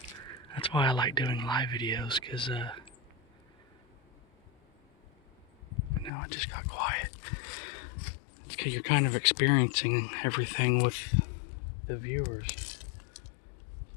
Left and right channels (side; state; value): right; drops out; at 6.1 s